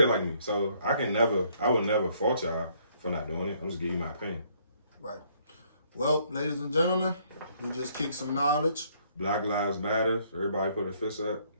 like me. So I would never fault y'all for not doing it. I'm just giving you my opinion. Right. Well, ladies and gentlemen, we just kicked some knowledge. Black Lives Matter. Everybody put a fist up.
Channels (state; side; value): inverted; both; correlation -0.66